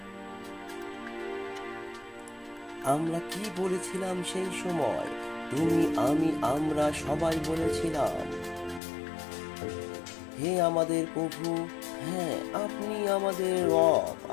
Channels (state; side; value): drops out; right; at 8.8 s